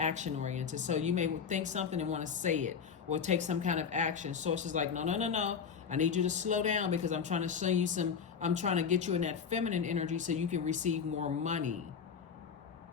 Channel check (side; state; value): right; quieter; 6.7 dB